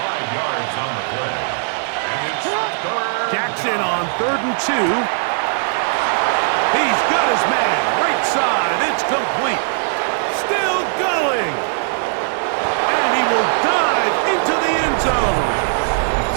yards on the play. And it's third. Jackson on 3rd and 2. He's got his man. Right side. It's complete. Still going. And he will dive into the end zone.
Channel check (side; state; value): left; silent; digital silence